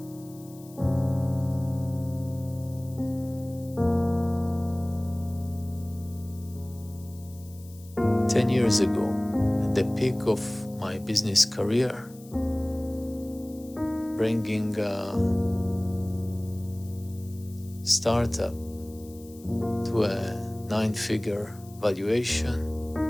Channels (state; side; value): noise; left; hiss, 23 dB below the sound